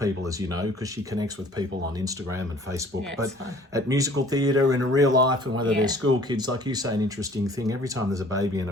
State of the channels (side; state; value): both; normal; correlation 0.53